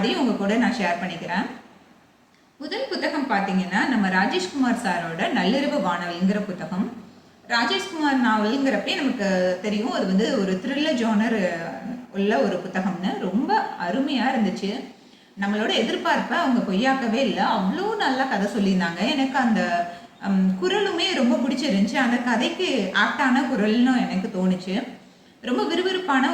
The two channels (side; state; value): both; identical; correlation 1.00